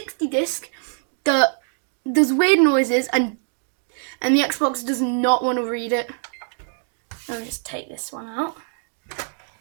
disc that does weird noises, and the Xbox does not want to read it. Let me just take this one out.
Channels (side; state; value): left; silent; digital silence